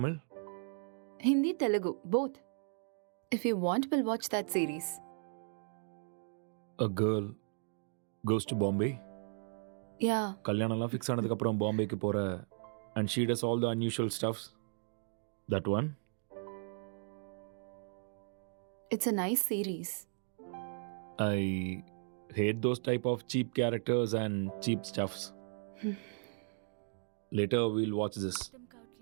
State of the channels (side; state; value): left; silent; 54 dB below the other